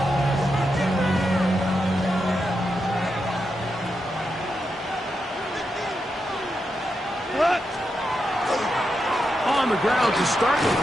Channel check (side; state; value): both; normal; correlation 0.86